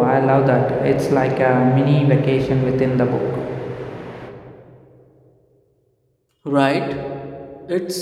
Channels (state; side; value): identical; both; correlation 1.00